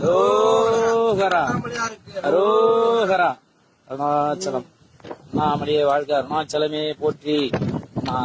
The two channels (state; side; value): identical; both; correlation 1.00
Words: அரோகரா. அருணாச்சலம். அண்ணாமலையே வாழ்க, அருணாச்சலமே போற்றி,